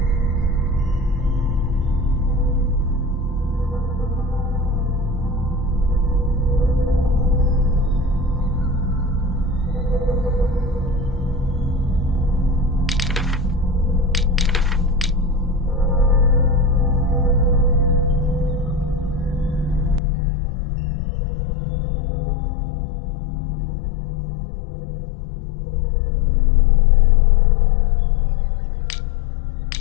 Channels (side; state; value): right; drops out; at 20.0 s